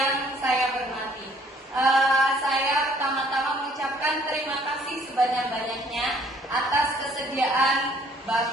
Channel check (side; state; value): both; normal; correlation 0.60